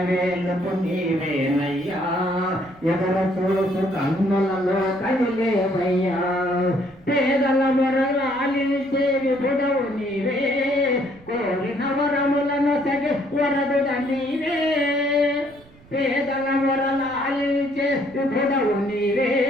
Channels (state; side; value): noise; right; rumble, 25 dB below the sound